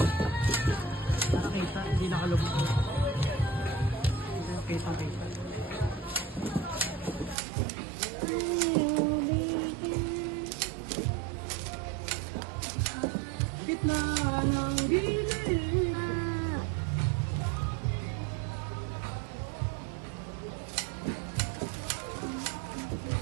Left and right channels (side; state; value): left; drops out; at 7.4 s